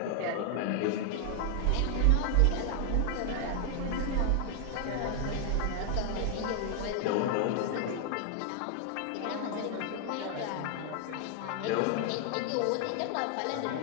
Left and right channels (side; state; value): both; different; correlation 0.00